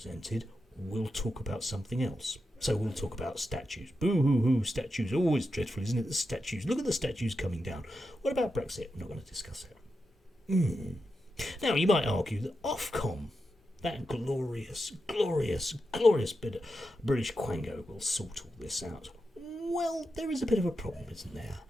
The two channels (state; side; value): normal; both; correlation 0.88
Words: we'll talk about something else. So we'll talk about statues. Boo-hoo-hoo, statues. Always dreadful, isn't it? The statues. Look at the statues coming down. What about Brexit? We're not going to discuss it. Now, you might argue that Ofcom, that glorious bit of British quango, will sort all this out. Well, there is a bit of a problem, isn't there?